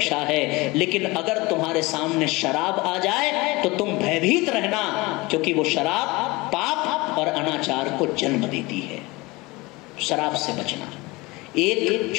है। लेकिन अगर तुम्हारे सामने शराब आ जाए तो तुम भयभीत रहना, क्योंकि वो शराब पाप और अनाचार को जन्म देती है। शराब से बचना। एक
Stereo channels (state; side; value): quieter; right; 22.8 dB